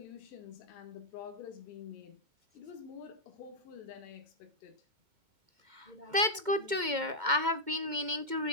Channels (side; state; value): left; late; 2.2 ms